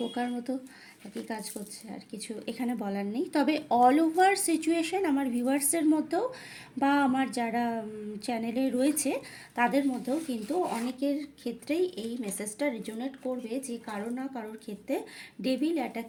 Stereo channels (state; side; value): identical; both; correlation 1.00